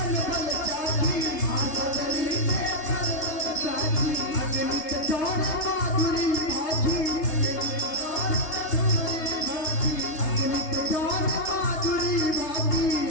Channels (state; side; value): late; right; 3.3 ms